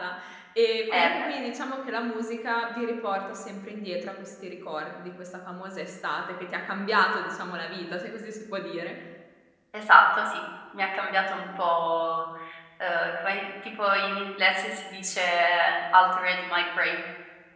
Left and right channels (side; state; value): both; identical; correlation 1.00